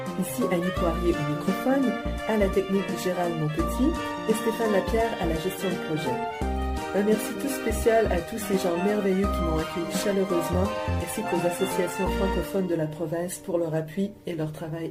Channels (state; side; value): identical; both; correlation 1.00